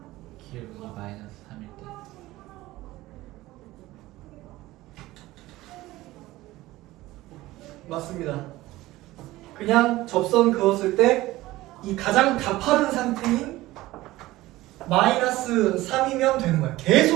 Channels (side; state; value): left; quieter; 17.7 dB